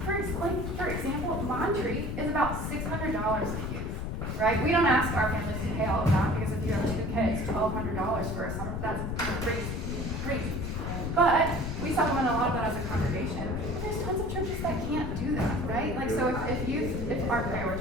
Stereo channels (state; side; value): noise; left; rumble, 3 dB below the sound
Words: for example, Monterey is about $600 a youth, right? We don't ask our families to pay all of that because if you have 2 kids, $1,200 for a summer, that's crazy. But we supplement a lot of that as a congregation. There's tons of churches that can't do that, right? Like, so if youth aren't